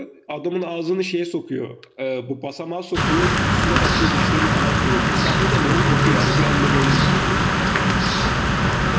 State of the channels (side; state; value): both; identical; correlation 1.00